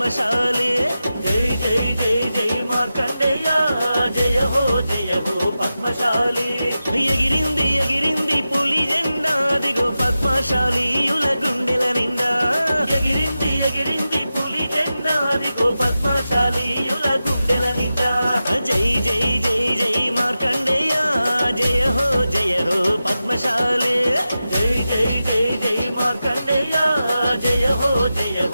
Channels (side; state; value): both; inverted; correlation -0.92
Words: జై జై జై జై మార్కండేయ జయ హో పద్మశాలి ఎగిరింది ఎగిరింది పులి జెండా దిగో పద్మశాలీయుల గుండెల నిండా ఎగిరింది ఎగిరింది పులి జెండా దిగో పద్మశాలీయుల గుండెల నిండా జై జై జై జై మార్కండేయ జయ హో పద్మశాలి జై జై జై జై మార్కండేయ జయ హో